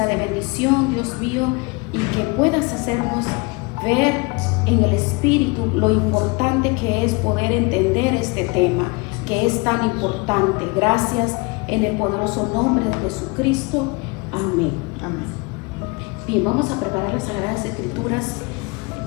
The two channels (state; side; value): quieter; right; 27.7 dB